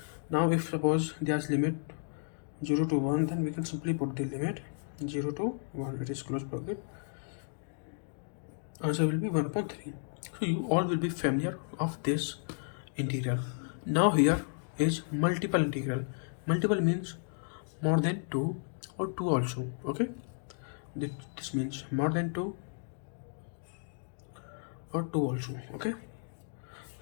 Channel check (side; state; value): right; silent; digital silence